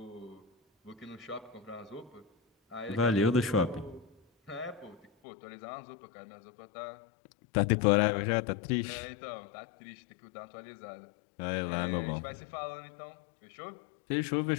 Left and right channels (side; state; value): right; drops out; at 5.1 s